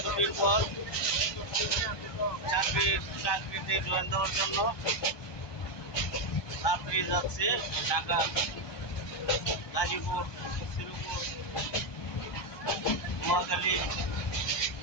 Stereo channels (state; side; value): late; right; 1.2 ms